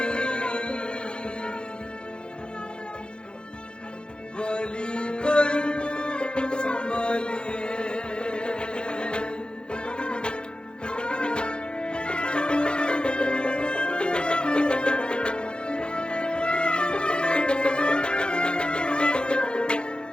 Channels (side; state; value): right; late; 0.051 ms